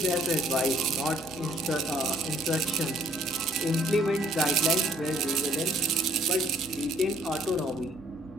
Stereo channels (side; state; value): both; normal; correlation 0.62